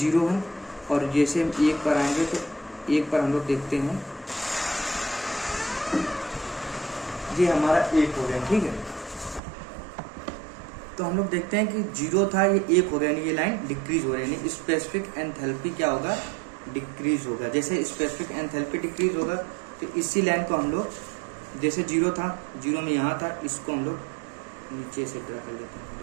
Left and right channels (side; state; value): left; drops out; at 9.4 s